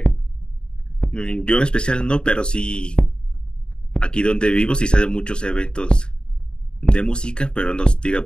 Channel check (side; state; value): right; late; 0.050 ms